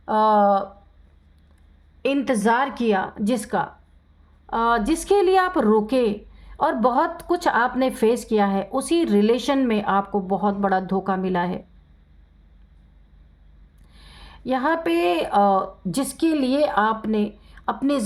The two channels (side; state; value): both; identical; correlation 1.00